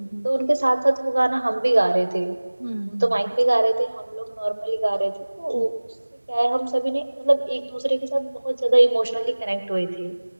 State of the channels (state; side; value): inverted; both; correlation -1.00